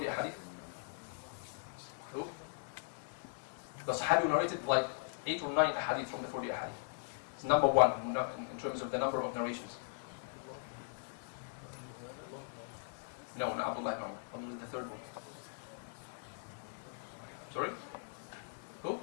hadith? Who? The Sahabi who narrated like 8 or 9 hadith from the 40 hadith. It's number one in terms of the number of narrations. No, not Abdullah ibn Umar. Abdullah is the third one. Sorry? Who?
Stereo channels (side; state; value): right; silent; digital silence